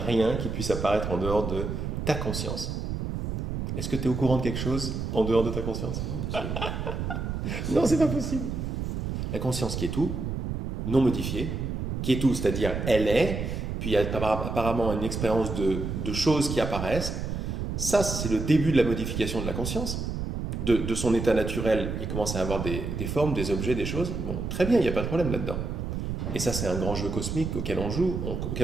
qui puisse apparaître en dehors de ta conscience. Est-ce que tu es au courant de quelque chose en dehors de ta conscience? Non, c'est pas possible. La conscience qui est tout, non modifiée, qui est tout, c'est-à-dire elle est, puis il y a apparemment une expérience de choses qui apparaissent. Ça, c'est le début de la modification de la conscience. De son état naturel, il commence à avoir des formes, des objets, des choses. Bon, très bien, il n'y a pas de problème là-dedans. Et ça, c'est un grand jeu cosmique auquel on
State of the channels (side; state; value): right; noise; rumble, 3 dB below the sound